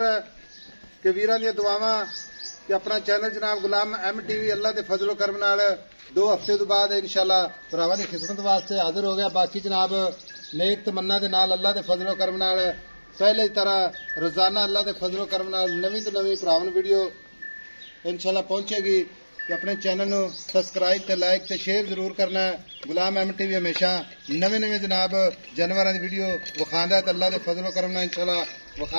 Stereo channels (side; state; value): both; inverted; correlation -1.00